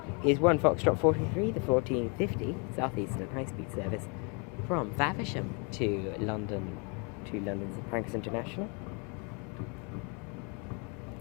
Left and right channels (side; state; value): right; quieter; 34.4 dB